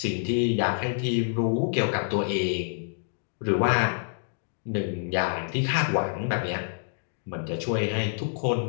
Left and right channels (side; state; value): right; silent; digital silence